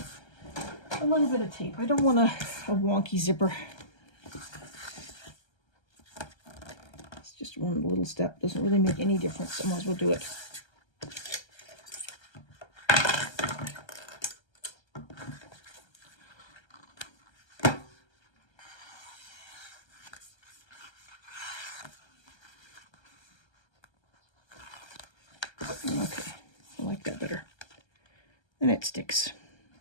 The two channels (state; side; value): late; right; 1.3 ms